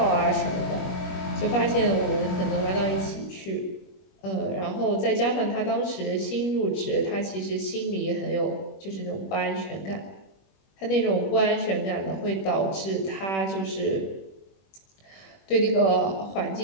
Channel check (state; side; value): late; right; 21 ms